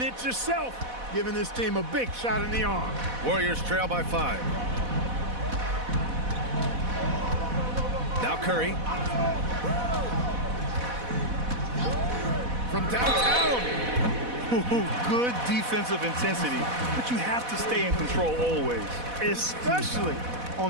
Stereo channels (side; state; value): left; late; 4.1 ms